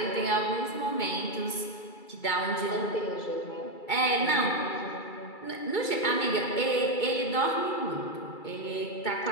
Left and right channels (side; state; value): right; late; 2.3 ms